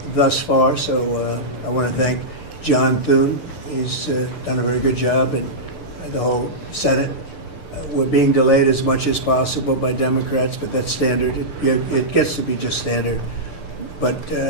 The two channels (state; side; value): late; right; 6.8 ms